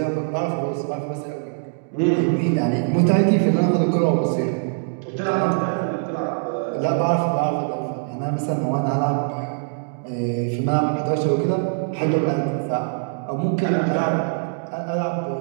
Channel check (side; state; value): left; silent; digital silence